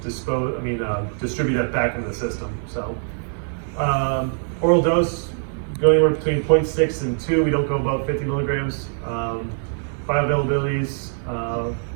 distribute that back into the system. So, oral dose, go anywhere between 0.6 and 2. We don't go above 50 milligrams. Bioavailabilities,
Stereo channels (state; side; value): silent; left; 64 dB below the other